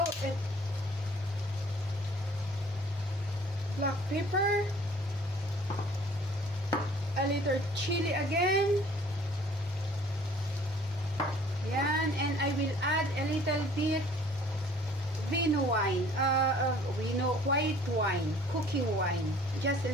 black pepper, a little chili again. Yan, and I will add a little bit vino wine, white wine, cooking wine, just a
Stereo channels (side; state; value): both; normal; correlation 0.53